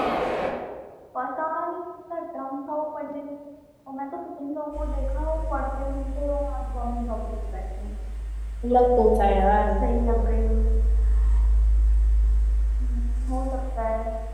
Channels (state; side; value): identical; both; correlation 1.00